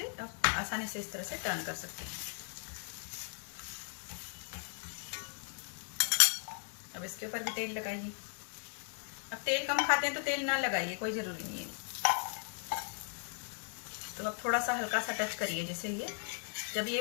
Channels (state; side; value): silent; right; 53 dB below the other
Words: आसानी से इस तरह से टर्न कर सकते हैं। अब इसके ऊपर भी तेल लगाइए। अब तेल कम खाते हैं तो तेल ना लगाइए, कोई ज़रूरी नहीं है। तो अब थोड़ा सा हल्का सा टच करिए, जैसे ये जब ये